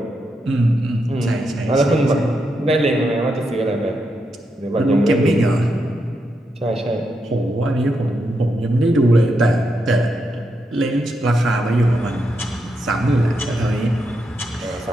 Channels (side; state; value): both; normal; correlation 0.83